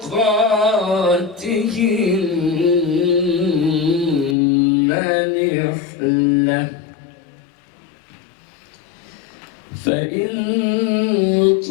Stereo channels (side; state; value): right; drops out; at 4.4 s